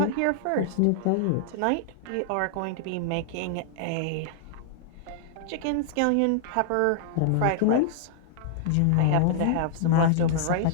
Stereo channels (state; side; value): different; both; correlation -0.01